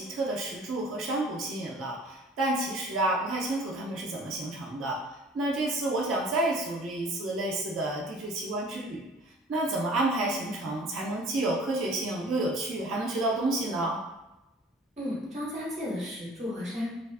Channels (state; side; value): normal; both; correlation 0.49